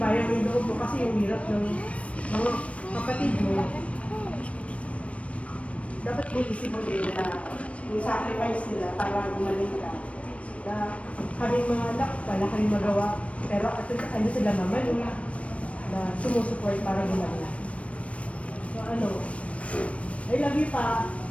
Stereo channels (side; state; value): right; late; 0.063 ms